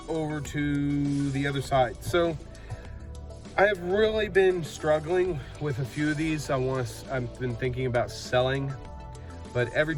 over to the other side. So I have really been struggling with a few of these. I've been thinking about selling, but every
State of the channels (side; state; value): both; identical; correlation 1.00